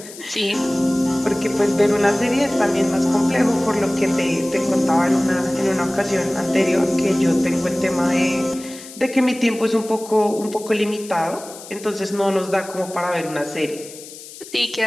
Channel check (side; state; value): left; noise; hiss, 16 dB below the sound